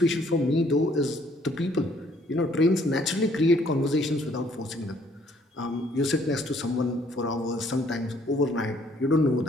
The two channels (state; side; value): normal; both; correlation 0.63